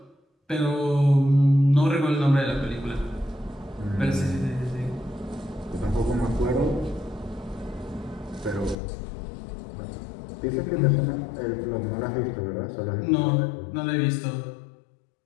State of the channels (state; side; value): drops out; right; at 8.8 s